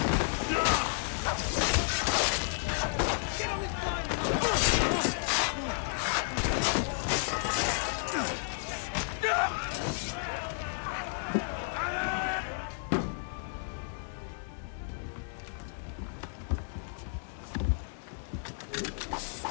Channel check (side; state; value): right; silent; digital silence